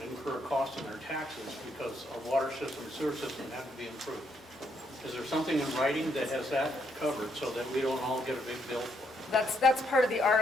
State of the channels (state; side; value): normal; both; correlation 0.75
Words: incur a cost in their taxes because our water system and sewer system have to be improved? Is there something in writing that has that covered so that we don't all get a big bill for it? That's part of the